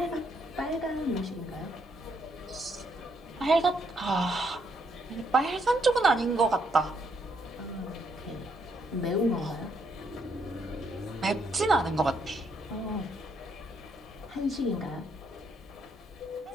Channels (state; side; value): normal; both; correlation 0.74